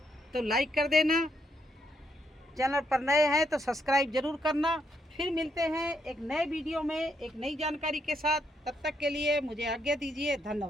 तो लाइक कर देना, चैनल पर नए हैं तो सब्सक्राइब ज़रूर करना। फिर मिलते हैं एक नए वीडियो में एक नई जानकारी के साथ। तब तक के लिए मुझे आज्ञा दीजिए।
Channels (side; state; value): both; normal; correlation 0.76